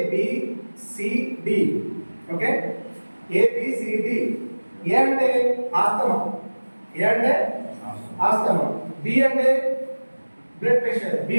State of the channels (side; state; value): both; inverted; correlation -1.00